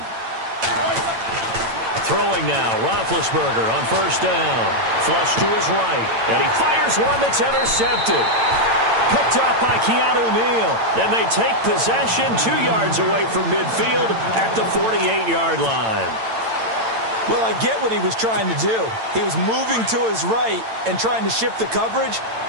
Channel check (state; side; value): late; left; 8.9 ms